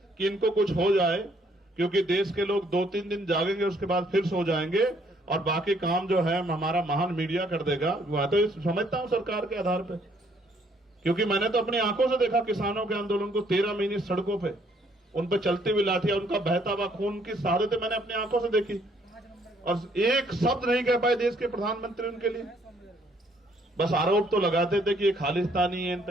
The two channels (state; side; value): normal; both; correlation 0.66